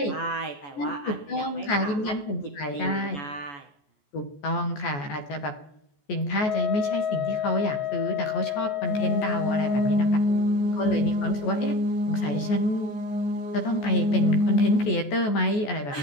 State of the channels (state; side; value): late; right; 14 ms